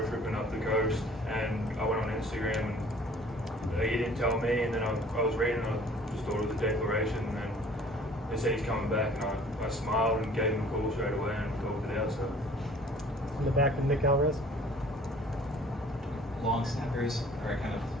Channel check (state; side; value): normal; both; correlation 0.52